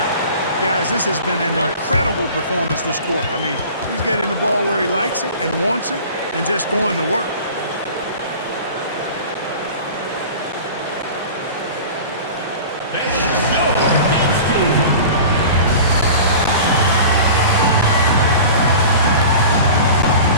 Guys, this has been an incredible performance this quarter. I mean, he's getting the ball where he likes it and wants it and just going to work.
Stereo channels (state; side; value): inverted; both; correlation -0.39